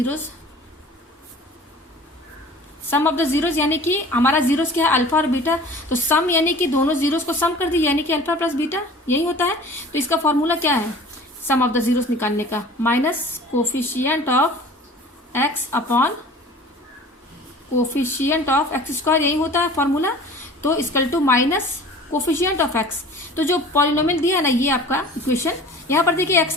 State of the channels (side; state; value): both; normal; correlation 0.44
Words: sum of the zeros यानी कि हमारा जीरोस क्या है, अल्फा और बीटा। तो सम यानी कि दोनों जीरोस को सम कर दीजिए, यानी कि अल्फा प्लस बीटा, यही होता है। तो इसका फॉर्मूला क्या है सम ऑफ द जीरोस निकालने का, minus coefficient of x upon coefficient of x square, यही होता है फॉर्मूला। तो equal to minus coefficient of x. तो जो पॉलिनोमियल दिया है ना, ये आपका इक्वेशन, यहाँ पर देखिए